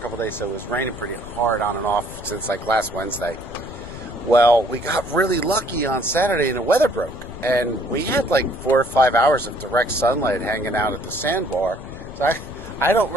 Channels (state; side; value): noise; left; rumble, 14 dB below the sound